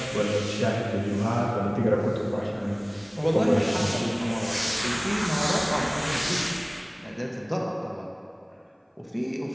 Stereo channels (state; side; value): identical; both; correlation 1.00